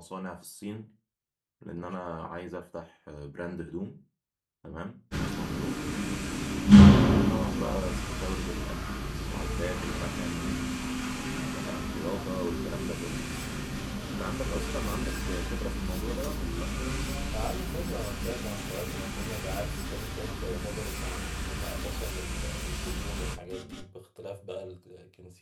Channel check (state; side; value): identical; both; correlation 1.00